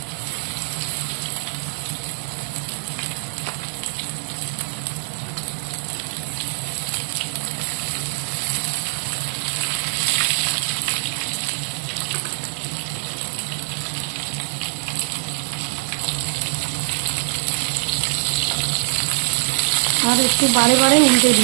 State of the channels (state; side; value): silent; left; digital silence